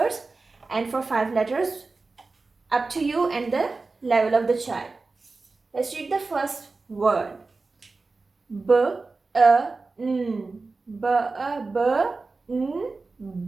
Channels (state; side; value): quieter; left; 3.8 dB